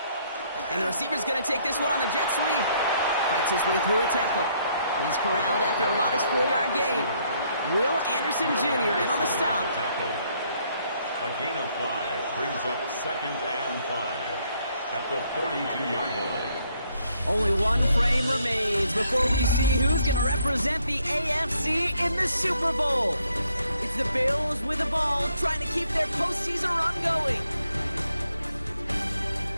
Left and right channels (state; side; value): inverted; both; correlation -0.70